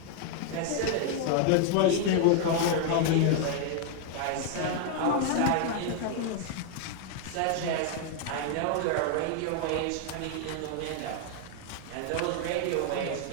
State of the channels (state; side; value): different; both; correlation 0.00